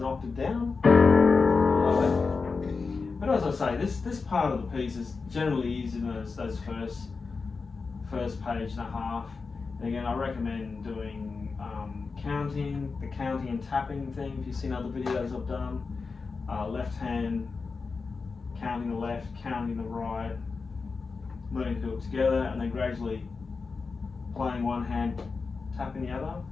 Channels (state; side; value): quieter; right; 4.6 dB